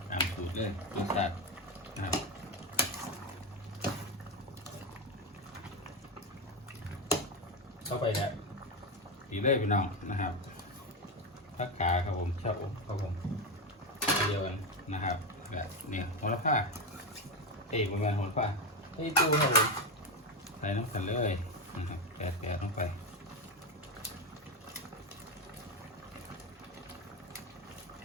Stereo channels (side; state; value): both; normal; correlation 0.13